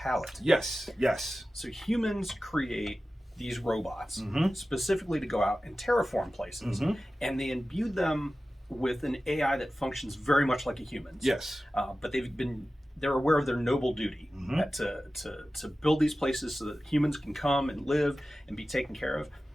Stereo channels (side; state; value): both; normal; correlation 0.95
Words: Yes. So humans create these robots specifically to go out and terraform places, and they imbue them with an AI that functions very much like a human's. Yes. But they're aware of their noble duty to build these places so that humans can come and live and be taken care of.